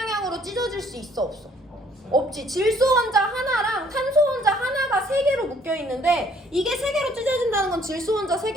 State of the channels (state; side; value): normal; both; correlation 0.61